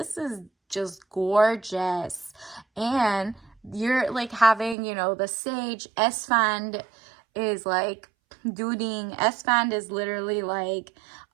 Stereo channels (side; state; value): left; drops out; at 4.8 s